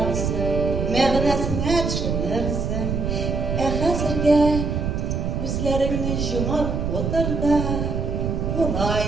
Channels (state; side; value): noise; right; rumble, 1 dB below the sound